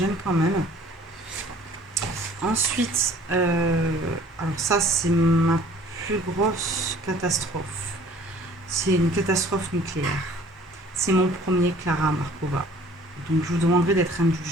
quand même. Ensuite, alors ça c'est ma plus grosse catastrophe. C'est une catastrophe nucléaire. C'est mon premier Clara Markova. Donc je vous demanderai d'être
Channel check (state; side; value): normal; both; correlation 0.52